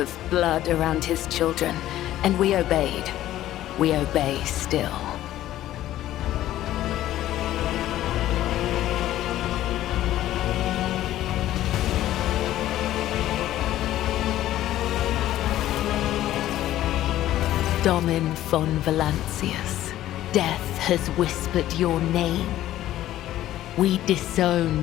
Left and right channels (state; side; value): quieter; right; 13.7 dB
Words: blood around his children, and we obeyed. We obey still. Domin von Valancius, death has whispered your name. We